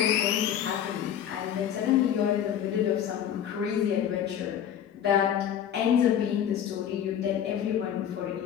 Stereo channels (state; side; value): quieter; right; 9.6 dB